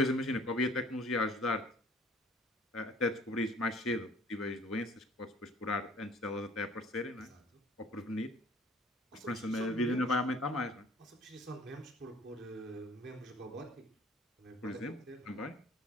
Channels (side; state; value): both; normal; correlation 0.53